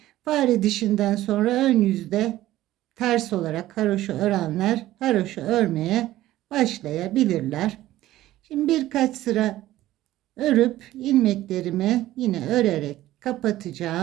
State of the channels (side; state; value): left; quieter; 15.0 dB